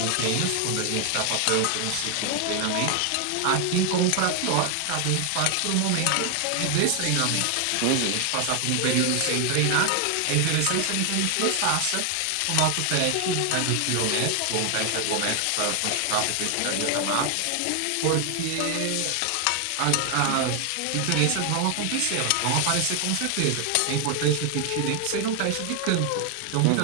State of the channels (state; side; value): different; both; correlation 0.00